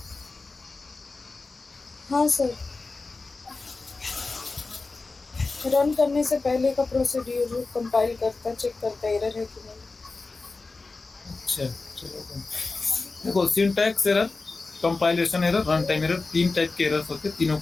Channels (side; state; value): right; quieter; 3.7 dB